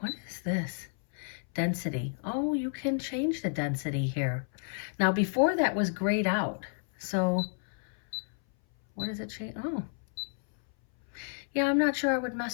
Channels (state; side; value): silent; right; 57 dB below the other